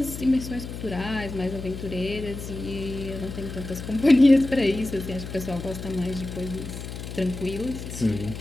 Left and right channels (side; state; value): left; noise; hum, 9 dB below the sound